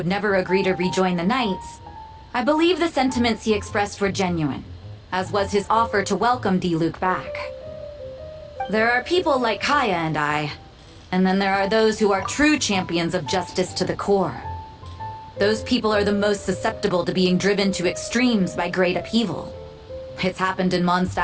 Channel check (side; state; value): both; identical; correlation 1.00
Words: never agree to rejoin the Knights, I believe the sentiments he expressed were genuine, as was his offer to welcome Diluc back. There are people like Kaya and I, and then there are those who are true champions of justice to the core. Those people are the most susceptible to being driven to extremes by great upheaval. It's happened in